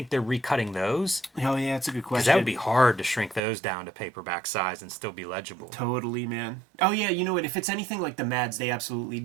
they're recutting those? Oh yeah, that's a good question. Because that would be hard to shrink those down to paperback size and still be legible. Totally, man. Oh yeah, you know what? If it's anything like the Mads, they absolutely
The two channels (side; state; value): left; drops out; at 3.4 s